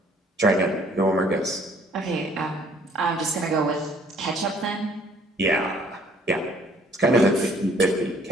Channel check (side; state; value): both; normal; correlation 0.60